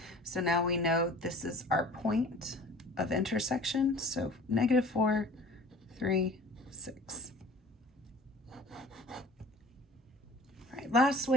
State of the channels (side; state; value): both; normal; correlation 0.45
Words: So now we know this is our point of intersection. So negative 4, 3, 6. All right, last